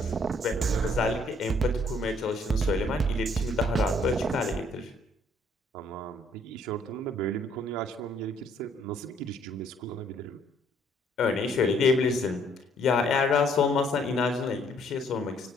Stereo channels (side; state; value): both; normal; correlation 0.64